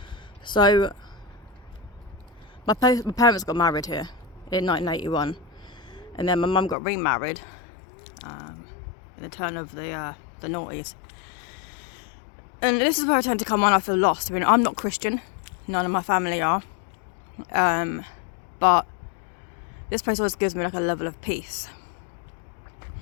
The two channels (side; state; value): right; drops out; at 6.8 s